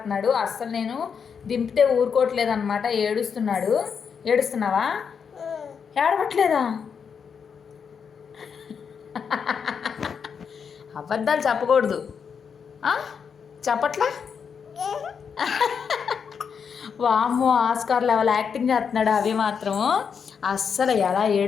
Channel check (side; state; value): right; quieter; 6.6 dB